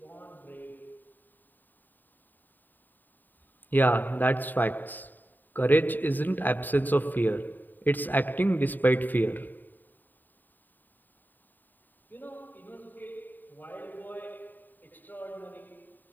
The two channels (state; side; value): late; right; 0.089 ms